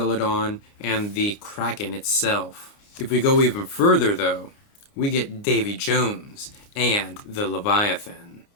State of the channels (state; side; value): late; right; 29 ms